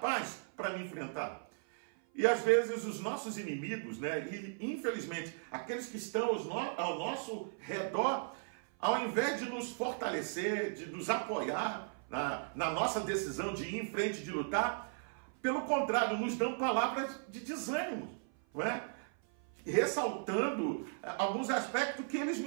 para me enfrentar? E às vezes os nossos inimigos, e infelizmente aqueles que estão ao nosso redor, ao invés de nos fortalecer, de nos apoiar na nossa decisão de ir em frente, de lutar, Pelo contrário, nos dão palavras de desânimo, não é? Ressaltando alguns aspectos que eles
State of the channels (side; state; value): left; silent; 53 dB below the other